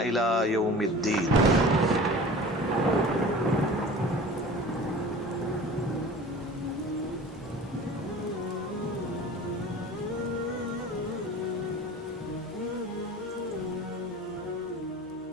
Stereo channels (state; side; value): normal; both; correlation 0.40